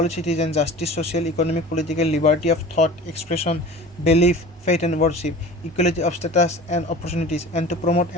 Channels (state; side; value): normal; both; correlation 0.39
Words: citizens justice, social, economic, political liberty of thought, expression, belief, faith and worship, equality of status and opportunities, and to promote